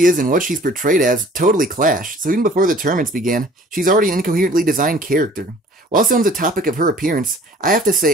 is and what she's portrayed as totally clash, so even before the tournaments began, she's already an incoherently designed character. While still on the topic of her appearance, I have to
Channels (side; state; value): both; normal; correlation 0.51